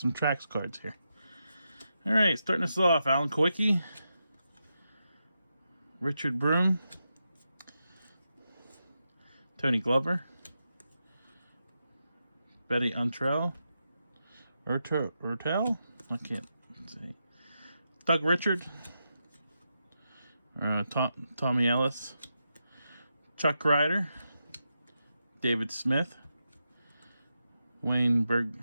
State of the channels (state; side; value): inverted; both; correlation -0.87